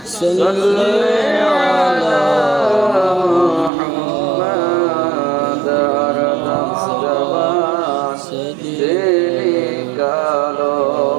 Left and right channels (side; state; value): left; drops out; at 3.7 s